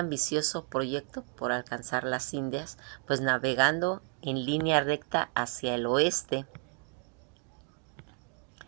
proyecto por alcanzar las Indias, pues navegando en línea recta hacia el oeste.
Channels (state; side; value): quieter; left; 39.0 dB